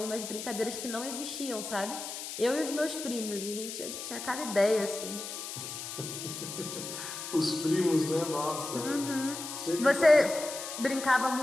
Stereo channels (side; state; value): left; noise; hiss, 8 dB below the sound